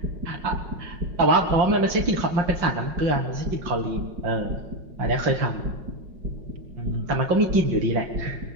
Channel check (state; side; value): late; left; 5.5 ms